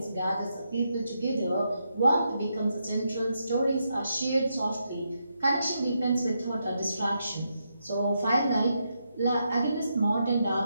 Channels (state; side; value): inverted; both; correlation -0.82